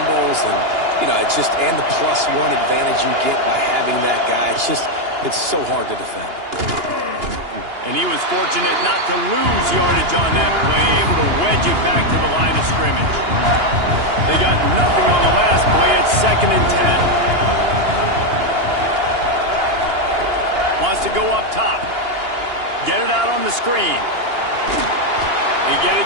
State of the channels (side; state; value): left; late; 2.8 ms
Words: and, you know, it's just, and the +1 advantage you get by having that guy. It's so hard to defend. And he was fortunate not to lose yardage on that play, able to wedge it back to the line of scrimmage. They got nothing on the last play at 2nd and 10. Wants to go up top. Get it out on the screen. They get